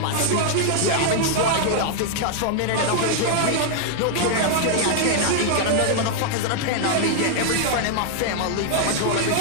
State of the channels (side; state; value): both; different; correlation 0.00